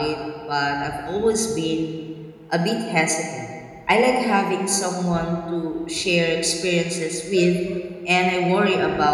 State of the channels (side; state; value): both; identical; correlation 1.00